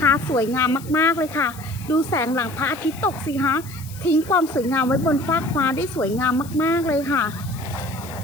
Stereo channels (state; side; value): noise; left; hiss, 18 dB below the sound